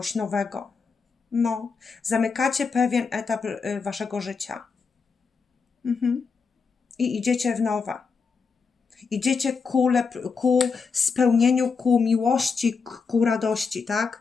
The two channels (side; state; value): right; quieter; 5.2 dB